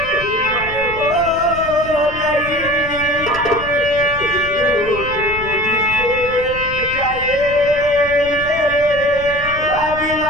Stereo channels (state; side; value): noise; left; rumble, 13 dB below the sound